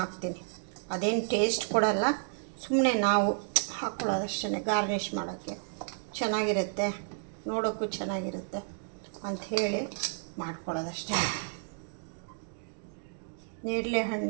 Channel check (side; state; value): left; silent; digital silence